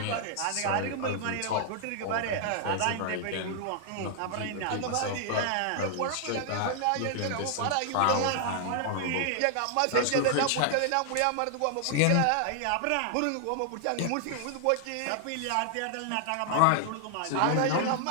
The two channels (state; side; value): different; both; correlation 0.00